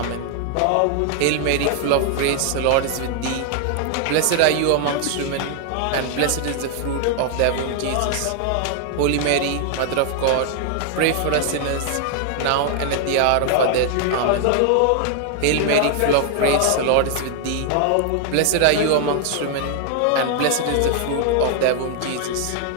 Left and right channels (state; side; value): different; both; correlation 0.00